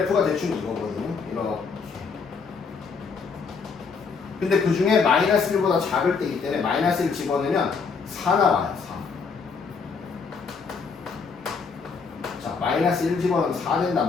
대충 이거거든요. 이렇게. 근데 그 중에 마이너스 1보다 작을 때이기 때문에 마이너스 1 집어넣으면 4 나와요. 4. 자, 마이너스 1 집어넣으면 4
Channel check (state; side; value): quieter; right; 5.2 dB